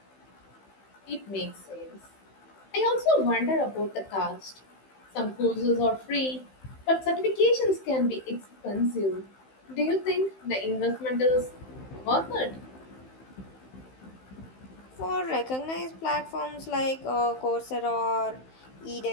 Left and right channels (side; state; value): right; late; 15 ms